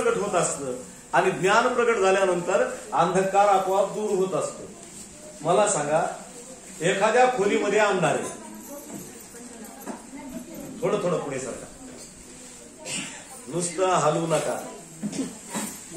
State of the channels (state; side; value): identical; both; correlation 1.00